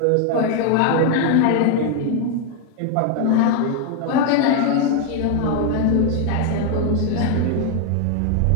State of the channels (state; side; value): different; both; correlation 0.01